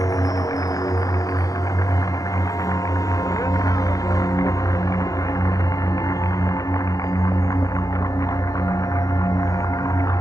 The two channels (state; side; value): late; right; 0.17 ms